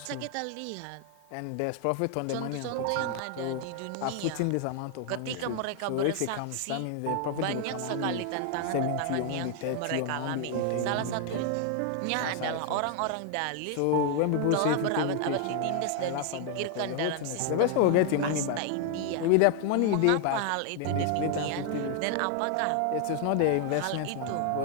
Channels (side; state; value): both; different; correlation 0.00